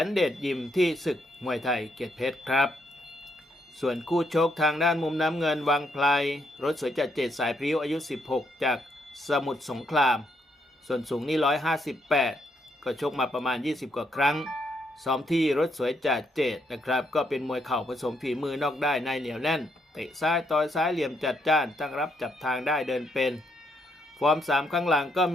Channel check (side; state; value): both; normal; correlation 0.75